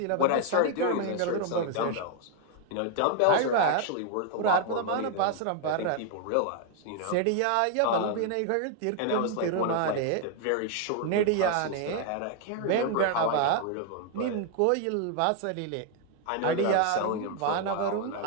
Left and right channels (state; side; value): different; both; correlation 0.00